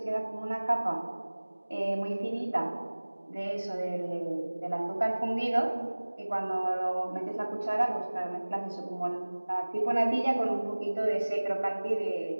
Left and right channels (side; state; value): both; inverted; correlation -1.00